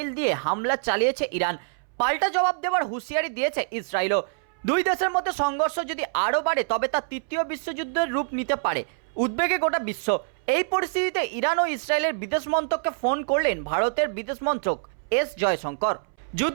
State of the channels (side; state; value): left; silent; 61 dB below the other